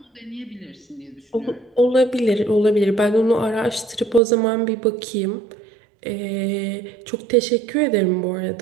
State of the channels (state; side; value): drops out; left; at 4.2 s